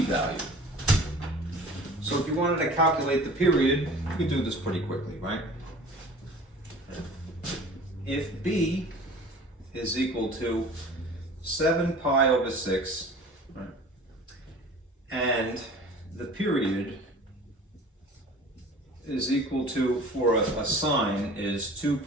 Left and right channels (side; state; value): both; normal; correlation 0.44